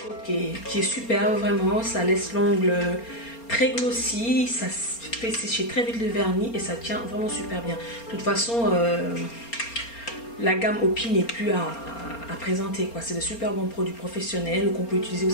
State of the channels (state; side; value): late; right; 4.3 ms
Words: qui est super, vraiment. Ça laisse l'ongle très glossy, ça fait sécher très vite le vernis et ça tient vraiment super bien. De toute façon, la gamme Opi n'est plus à présenter, quoi. C'est de super bons produits professionnels qu'on peut utiliser